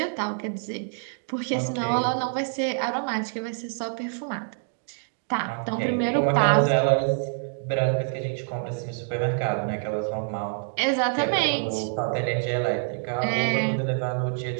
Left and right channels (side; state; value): left; silent; digital silence